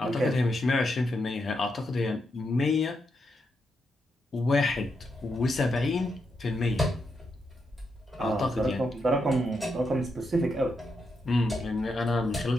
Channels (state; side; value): normal; both; correlation 0.83